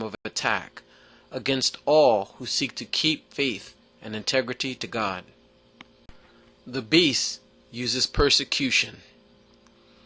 of attack against all who seek to keep faith and integrity to God. The beast uses persecution.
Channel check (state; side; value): identical; both; correlation 1.00